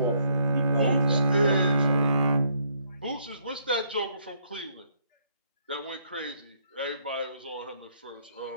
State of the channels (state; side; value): inverted; both; correlation -0.70